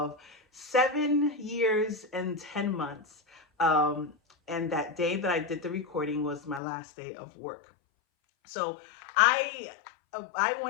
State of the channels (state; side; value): drops out; right; at 6.6 s